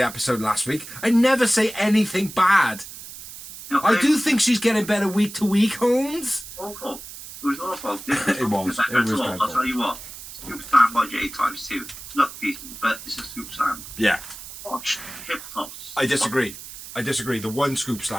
episode last week. I never say anything bad. no, I do think she's getting better week to week, Holmes. Awful. It was awful. It was dreadful. I'll tell you what. Scoop slam by Jade times 2. Look decent, but it's a scoop slam. Yeah. Watch hip toss. I disagree. The one scoop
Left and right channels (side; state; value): right; noise; hiss, 13 dB below the sound